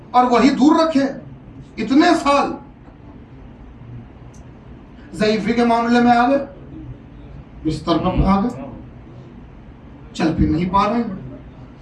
اور وہی دور رکھے. اتنے سال ضعیفی کے معاملے میں آ گئے، بستر پر آ گئے، چل پھر نہیں پا رہے ہیں،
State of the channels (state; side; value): identical; both; correlation 1.00